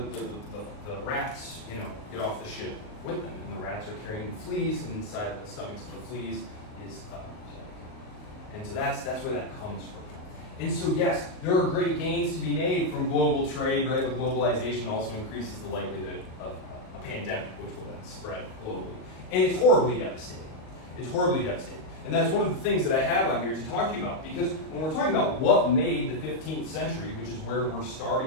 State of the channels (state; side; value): late; right; 38 ms